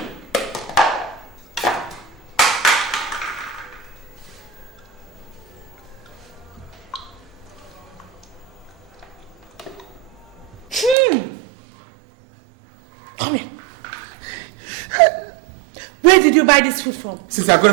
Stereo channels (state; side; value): drops out; left; at 11.0 s